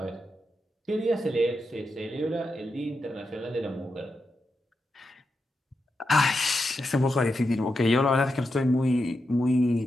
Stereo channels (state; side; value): normal; both; correlation 0.87